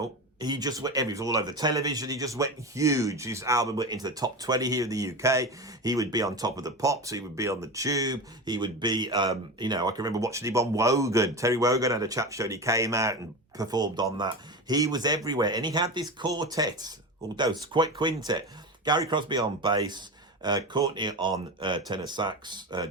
he just went, he was all over the television. He just went huge. His album went into the top 20 here in the UK. He would be on Top of the Pops. He would be on the Tube. He would be, you know, I can remember watching him on Wogan. Terry Wogan had a chat show and he came out and performed on that. He was everywhere. And he had this quartet, although it's quite quintet. Gary Crosby on bass, Courtney on tenor sax,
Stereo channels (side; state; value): both; normal; correlation 0.24